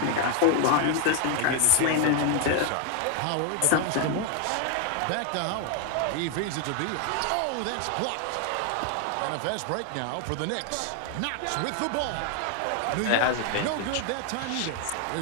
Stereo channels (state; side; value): different; both; correlation 0.00